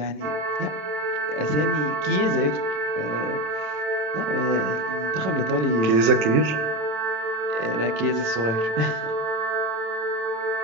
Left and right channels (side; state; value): left; late; 27 ms